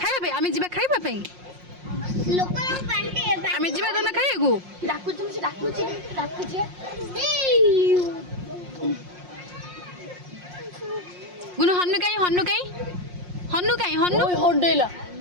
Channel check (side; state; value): left; late; 5.6 ms